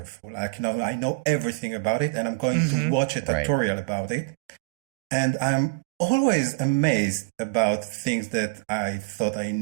Like, you know, I know everything about it and I'm going to watch a tutorial about it. And I'm always amazed about things that I thought I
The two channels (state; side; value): quieter; left; 25.6 dB